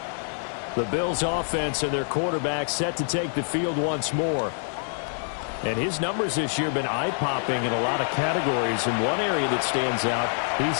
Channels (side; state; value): right; silent; 61 dB below the other